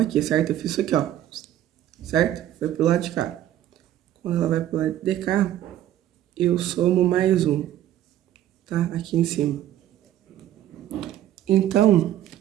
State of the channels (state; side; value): quieter; left; 12.3 dB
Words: aqui, certo? Eu fiz isso aqui, ó, certo? Foi pro lado de cá. Quando ela vai pro lado de cá, eu somo mais 1, tá? Aqui em cima. Então